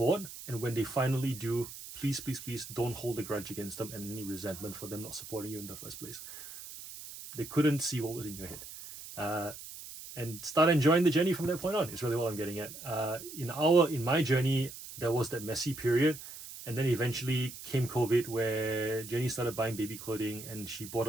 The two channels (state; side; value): noise; right; hiss, 13 dB below the sound